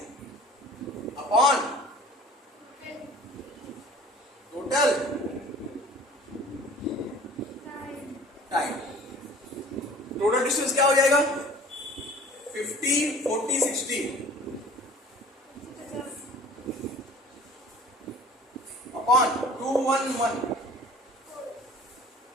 upon total time. Total distance क्या हो जाएगा? 50, 40, 60 अपॉन 211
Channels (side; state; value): both; normal; correlation 0.47